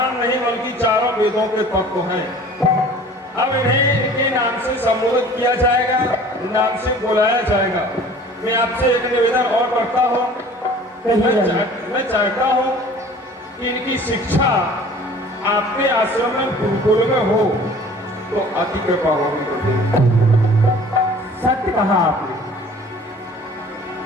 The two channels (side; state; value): both; normal; correlation 0.47